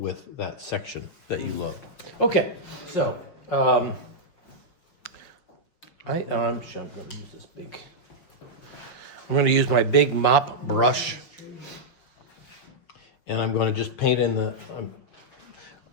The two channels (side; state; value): right; late; 6.2 ms